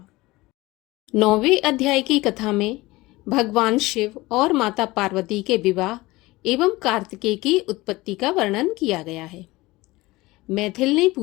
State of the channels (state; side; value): quieter; right; 20.2 dB